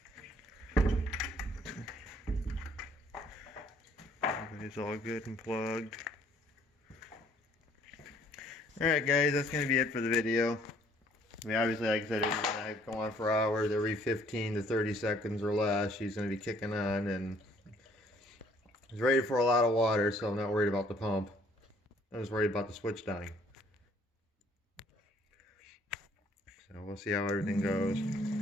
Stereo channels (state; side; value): normal; both; correlation 0.61